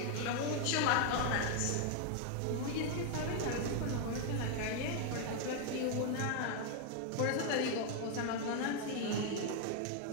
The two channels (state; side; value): different; both; correlation 0.00